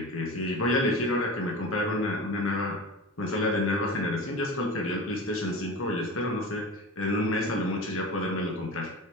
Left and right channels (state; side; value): normal; both; correlation 0.32